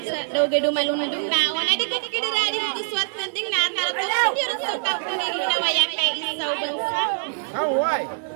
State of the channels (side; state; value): left; silent; digital silence